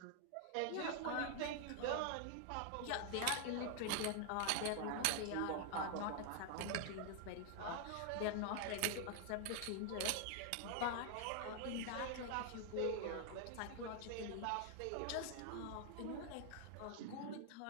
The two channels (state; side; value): different; both; correlation 0.00